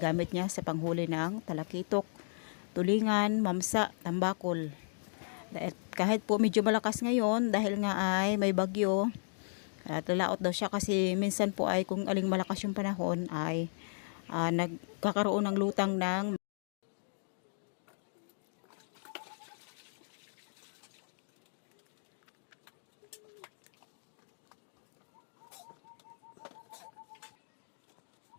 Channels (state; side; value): silent; right; digital silence